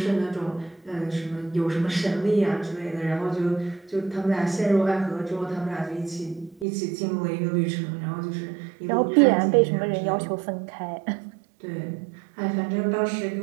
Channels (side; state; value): left; drops out; at 6.7 s